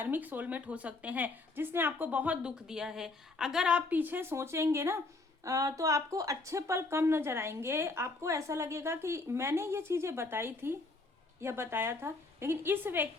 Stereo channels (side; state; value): right; quieter; 3.4 dB